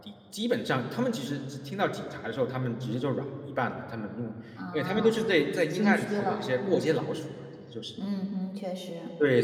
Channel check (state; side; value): identical; both; correlation 1.00